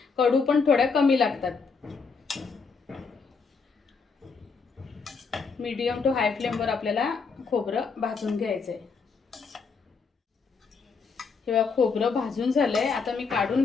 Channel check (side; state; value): right; quieter; 5.1 dB